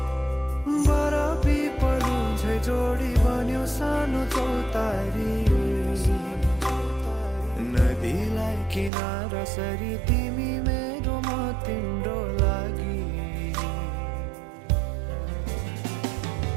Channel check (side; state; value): left; drops out; at 8.9 s